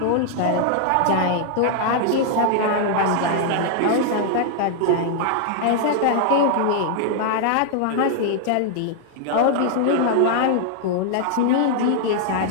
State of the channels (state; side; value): different; both; correlation -0.01